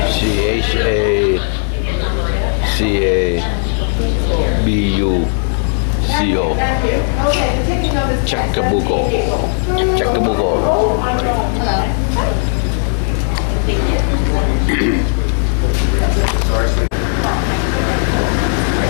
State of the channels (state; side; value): silent; right; 60 dB below the other